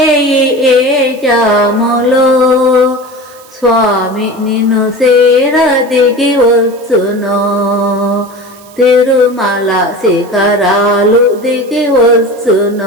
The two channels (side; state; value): right; noise; hiss, 25 dB below the sound